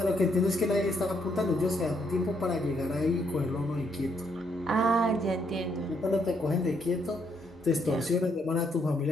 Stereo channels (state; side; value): normal; both; correlation 0.73